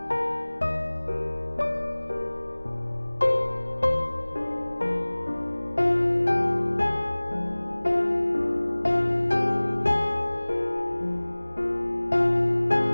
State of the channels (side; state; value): both; inverted; correlation -1.00